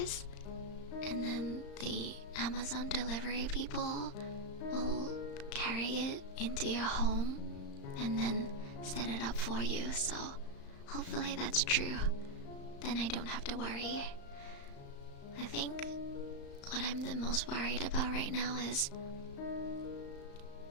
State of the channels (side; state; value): right; late; 35 ms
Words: and then the Amazon delivery people will carry it into your home and then set it up for you, so hopefully that's true. Then I don't have to worry. I think what I'm the most worried about right now is